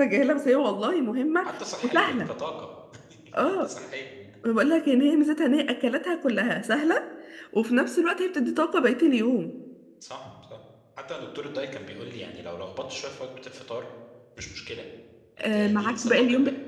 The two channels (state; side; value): identical; both; correlation 1.00